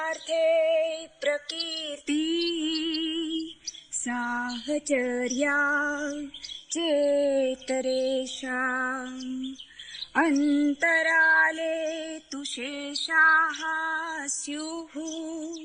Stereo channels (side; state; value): both; identical; correlation 1.00